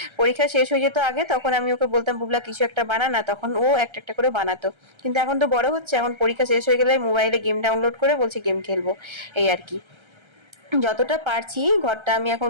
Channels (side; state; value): left; late; 1.3 ms